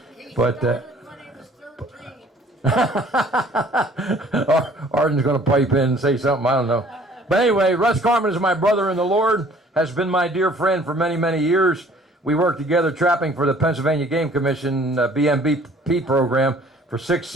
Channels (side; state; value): both; normal; correlation 0.55